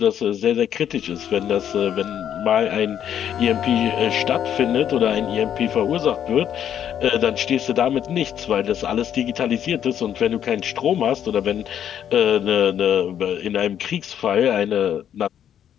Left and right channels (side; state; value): right; quieter; 9.7 dB